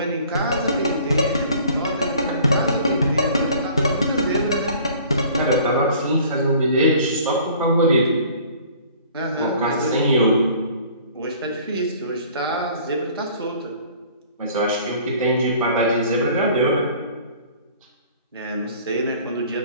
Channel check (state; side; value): inverted; both; correlation -0.51